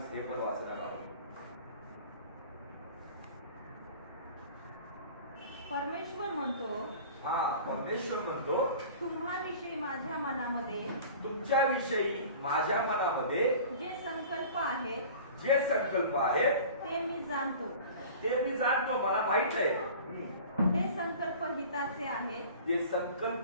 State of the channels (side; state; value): both; inverted; correlation -0.42